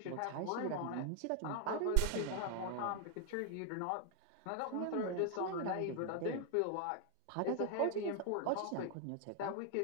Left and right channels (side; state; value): both; different; correlation 0.00